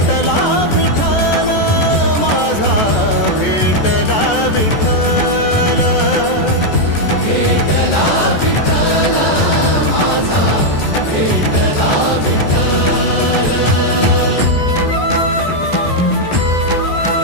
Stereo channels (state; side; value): late; right; 14 ms